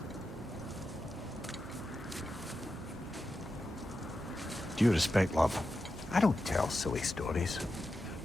Due respect, love, I don't tell silly stories.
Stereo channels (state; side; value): normal; both; correlation 0.90